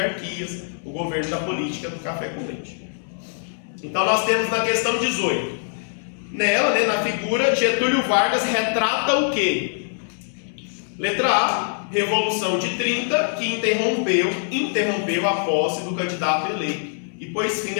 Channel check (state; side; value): silent; right; digital silence